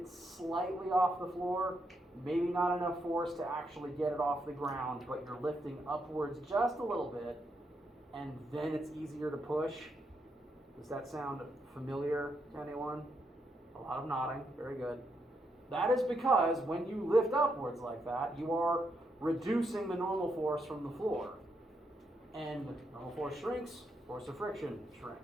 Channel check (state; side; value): normal; both; correlation 0.80